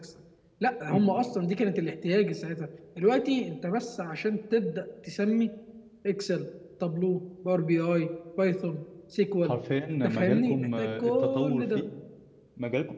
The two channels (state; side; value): identical; both; correlation 1.00